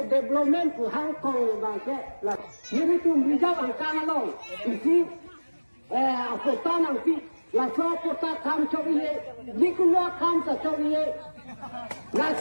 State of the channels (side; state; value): both; inverted; correlation -1.00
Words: development tu Hong Kong bangsa lah. Ini tu bijak angkana long. Isi kota nanti lah so kota kam cobiye, dikulua kam sa cobiye. Lah